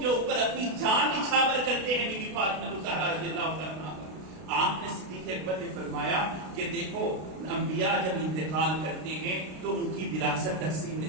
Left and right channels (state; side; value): late; left; 32 ms